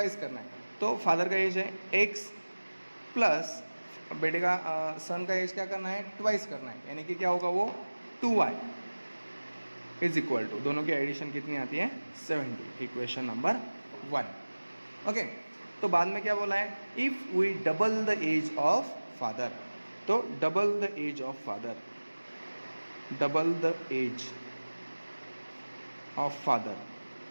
करना है। तो फादर का एज है x प्लस बेटे का सन का एज क्या करना है, ट्वाइस करना है, यानी कि क्या होगा वो 2y इज इक्वल टू, दोनों की एडिशन कितनी आती है 70। Equation number 1। ओके, तो बाद में क्या बोला है, if we double the age of father, तो double the age of father, double the age of father,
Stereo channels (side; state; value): both; inverted; correlation -1.00